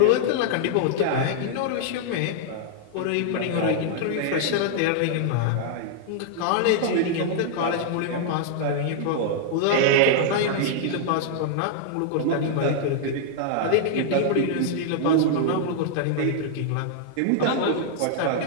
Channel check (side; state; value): both; different; correlation -0.01